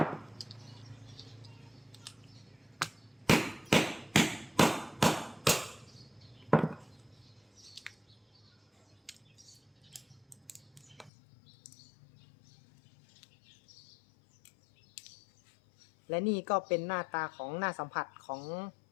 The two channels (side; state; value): right; drops out; at 11.1 s